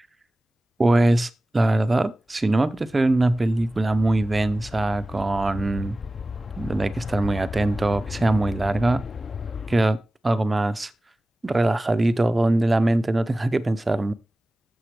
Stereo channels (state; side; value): normal; both; correlation 0.97